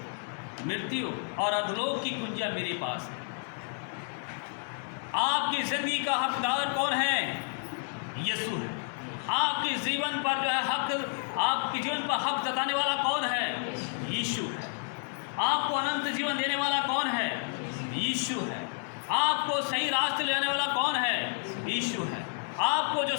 मृत्यु और अधोलोक की कुंजियां मेरे पास है। आपकी जिंदगी का हकदार कौन है? यीशु है। आपके जीवन पर जो है हक, आपके जीवन पर हक जताने वाला कौन है? यीशु है। आपको अनंत जीवन देने वाला कौन है? यीशु है। आपको सही रास्ते ले जाने वाला कौन है? यीशु है। आपको जो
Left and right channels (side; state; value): right; silent; 57 dB below the other